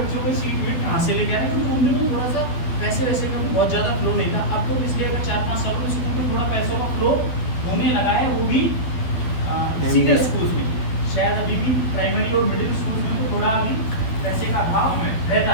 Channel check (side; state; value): right; late; 12 ms